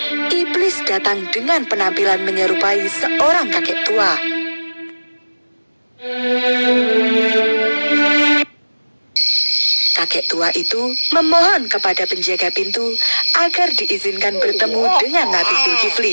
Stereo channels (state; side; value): inverted; both; correlation -1.00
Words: iblis datang dengan penampilan menyerupai seorang kakek tua. Kakek tua itu memohon kepada penjaga pintu agar diizinkan bertemu dengan Nabi